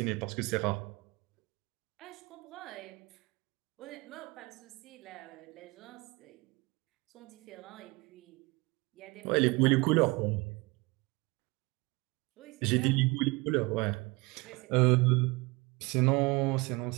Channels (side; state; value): left; quieter; 25.1 dB